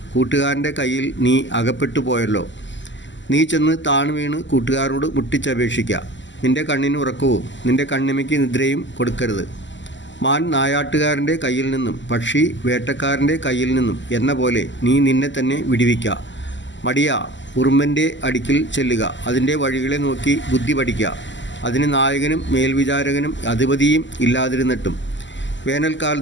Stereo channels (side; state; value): right; late; 0.54 ms